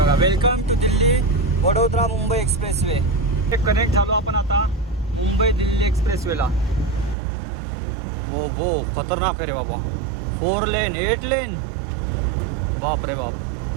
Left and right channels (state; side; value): drops out; left; at 7.2 s